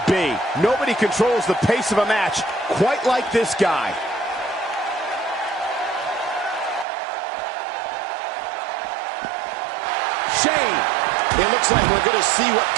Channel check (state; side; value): drops out; left; at 6.9 s